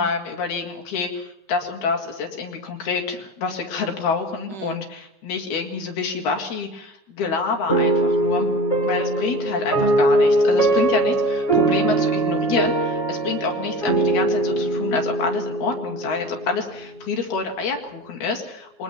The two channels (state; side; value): late; right; 9.5 ms